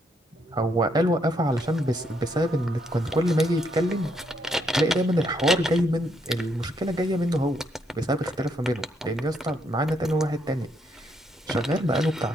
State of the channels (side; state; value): both; normal; correlation 0.74